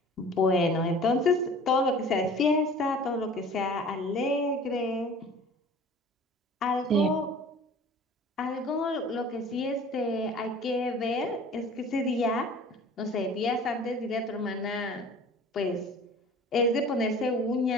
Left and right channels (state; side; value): normal; both; correlation 0.45